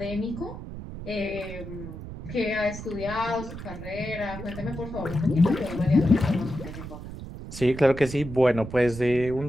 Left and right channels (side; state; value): right; noise; rumble, 11 dB below the sound